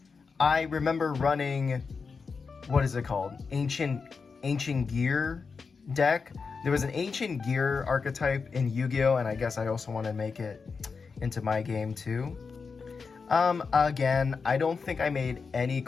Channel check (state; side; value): quieter; right; 5.1 dB